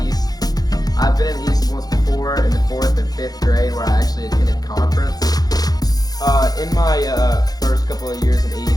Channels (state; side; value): late; right; 0.19 ms